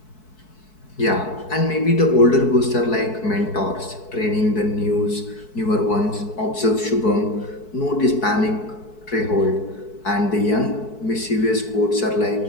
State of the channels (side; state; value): right; late; 4.6 ms